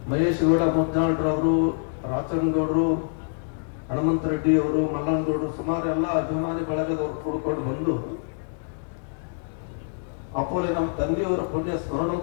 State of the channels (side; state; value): right; silent; 61 dB below the other